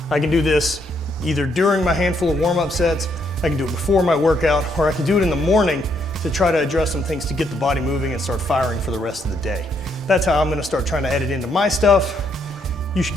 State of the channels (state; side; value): normal; both; correlation 0.73